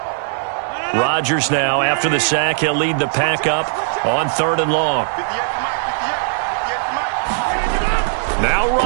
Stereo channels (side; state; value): left; silent; digital silence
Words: Rodgers now, after the sack, he'll lead the pack up on 3rd and long. Now